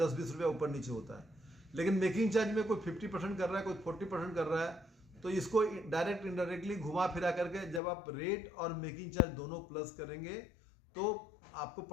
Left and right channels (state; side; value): drops out; right; at 7.8 s